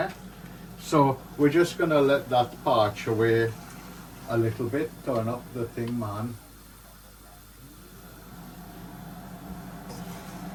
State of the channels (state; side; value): identical; both; correlation 1.00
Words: So we're just going to let that parch away a little bit. Turn up the thing, man.